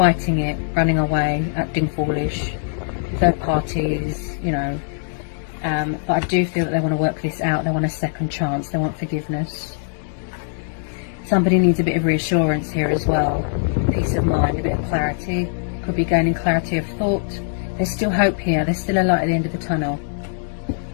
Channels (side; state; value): right; silent; digital silence